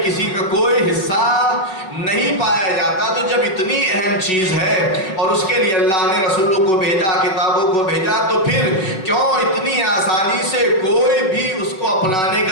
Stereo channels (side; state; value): right; late; 5.3 ms